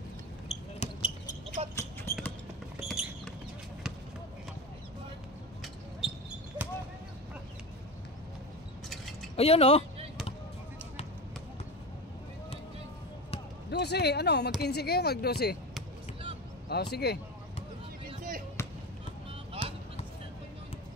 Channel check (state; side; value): normal; both; correlation 0.25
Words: Ayun oh. 12, ano, mag-15 kayo, mag-12. Oh, sige. 15. Ha?